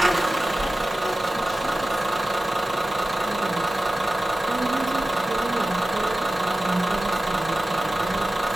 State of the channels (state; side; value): normal; both; correlation 0.95